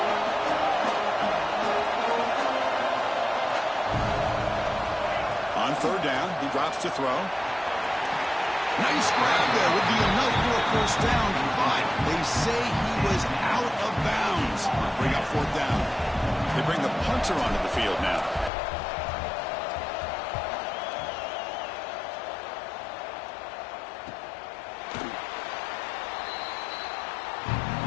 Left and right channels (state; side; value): drops out; right; at 18.5 s